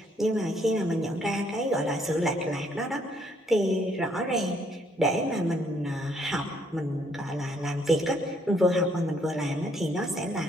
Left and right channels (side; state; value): both; normal; correlation 0.68